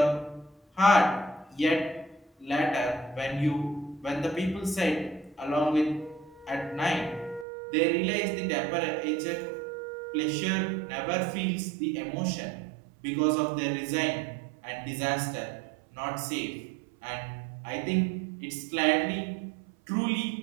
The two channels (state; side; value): drops out; left; at 7.5 s